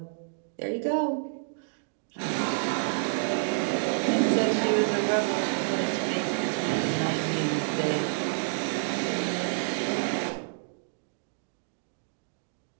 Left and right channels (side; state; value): left; silent; digital silence